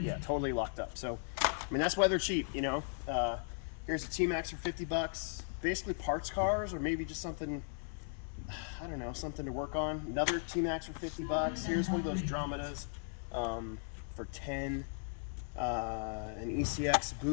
totally locked up. So, I mean, that's why they're cheap, you know. Here's a T-Max for $50. Basically parts cars, or maybe just something, I don't know, something to work on. Another T-Max for $50. Here's one of those Dromedas for $10. An ECX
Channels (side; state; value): right; silent; 53 dB below the other